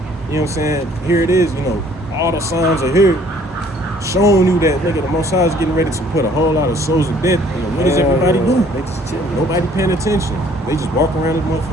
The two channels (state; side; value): normal; both; correlation 0.58